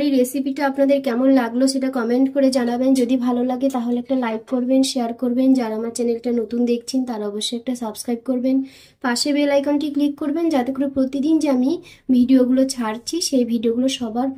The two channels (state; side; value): identical; both; correlation 1.00